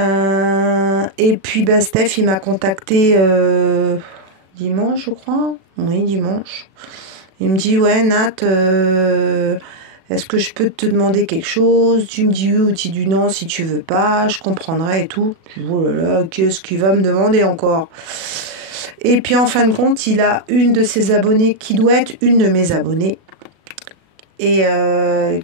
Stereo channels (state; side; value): late; left; 37 ms